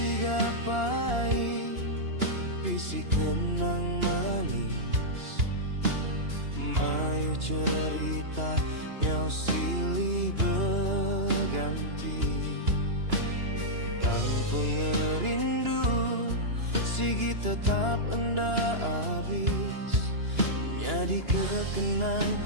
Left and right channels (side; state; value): left; late; 2.9 ms